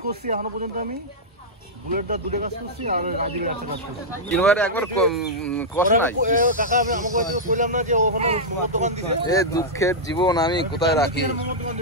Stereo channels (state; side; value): normal; both; correlation -0.07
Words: করছি এখনো পর্যন্ত। আমি বুলেটটা দুটো কাজ করছি আর রাজিকে একটা কাজ করছি। কিনবারে একবার কষ্ট নাই কাকা। আমি আমাকে কইলাম না যে ওখানে মোমো দোকান দিছে। এ দুঃখের জীবন আমি কোথায় রাখি।